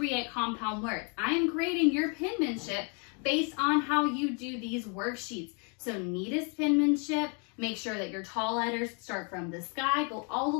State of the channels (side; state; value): right; quieter; 36.9 dB